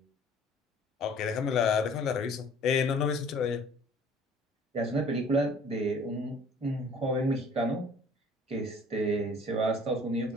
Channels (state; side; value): normal; both; correlation 0.52